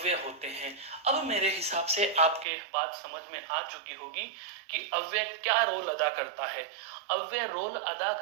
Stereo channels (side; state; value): left; drops out; at 2.5 s